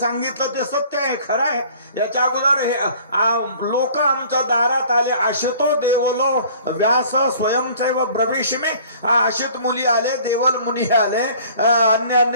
ते सत्य आहे, खरं आहे. याच्या अगोदर हे लोक आमच्या दारात आले, आशितो देवलो व्यास स्वयंचैव ब्रवीषमे, आशित मुली आले, देवल मुनी आले,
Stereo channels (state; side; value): inverted; both; correlation -0.51